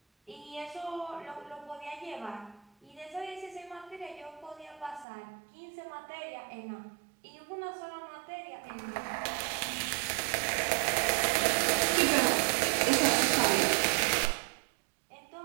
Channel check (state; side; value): drops out; left; at 5.1 s